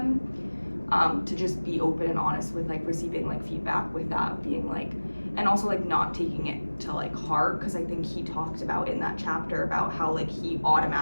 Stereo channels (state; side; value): inverted; both; correlation -1.00